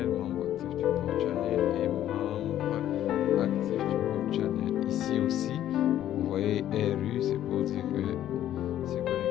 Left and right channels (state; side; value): quieter; right; 12.0 dB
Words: membre actif du port channel et membre actif du port channel. Ici aussi, vous voyez RU, c'est pour dire que c'est